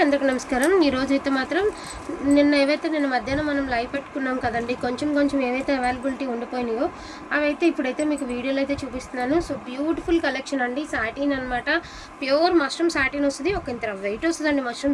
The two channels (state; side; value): identical; both; correlation 1.00